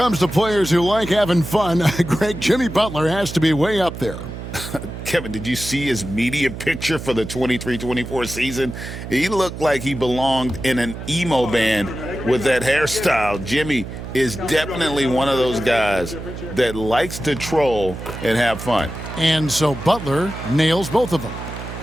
to players who like having fun, Greg, Jimmy Butler has to be way up there. Kevin, did you see his media picture for the 23-24 season? He looked like he belonged in an emo band with that hairstyle. Jimmy is definitely one of those guys that likes to troll and have fun. And so Butler nails both of them.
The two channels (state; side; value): noise; right; hum, 9 dB below the sound